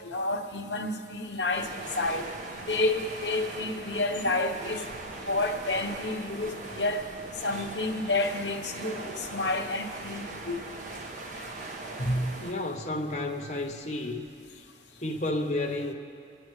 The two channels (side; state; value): both; normal; correlation 0.05